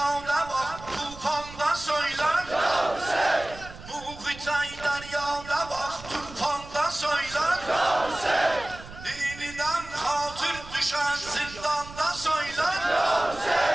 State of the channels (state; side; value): noise; right; rumble, 16 dB below the sound